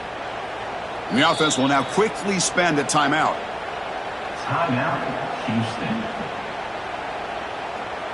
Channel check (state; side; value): identical; both; correlation 1.00